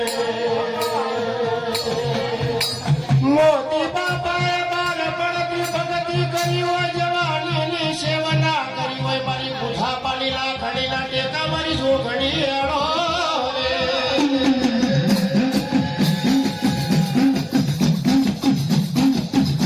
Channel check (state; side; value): identical; both; correlation 1.00